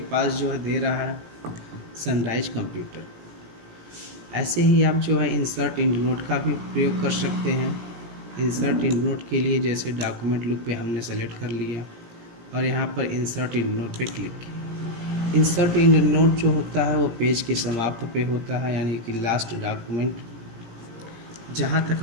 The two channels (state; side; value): late; left; 17 ms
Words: पास जो है दे रहा है सनराइज कंप्यूटर। ऐसे ही आप जो है इंसर्ट इंड नोट का भी प्रयोग कर सकते हैं। इंसर्ट इंड नोट के लिए जैसे डॉक्यूमेंट लुक पे हमने सेलेक्ट कर लिया और यहाँ पर इंसर्ट इंड नोट पे क्लिक किया। इंसर्ट इंड नोट जो होता है वो पेज के समाप्त पे होता है, यानी कि लास्ट डॉक्यूमेंट जहाँ तक